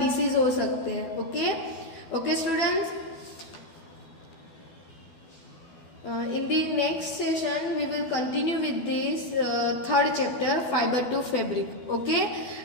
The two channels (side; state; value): right; late; 12 ms